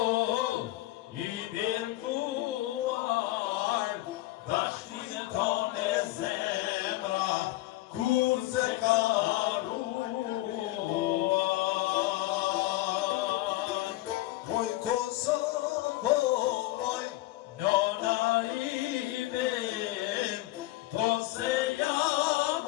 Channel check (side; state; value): right; quieter; 17.7 dB